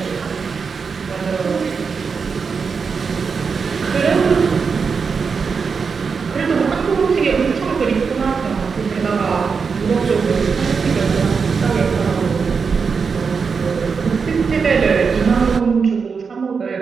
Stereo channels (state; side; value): quieter; left; 5.5 dB